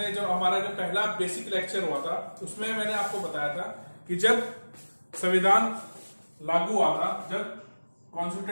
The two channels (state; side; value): inverted; both; correlation -1.00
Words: जो हमारा जो पहला बेसिक लेक्चर हुआ था उसमें मैंने आपको बताया था कि जब संविधान लागू हुआ था, जब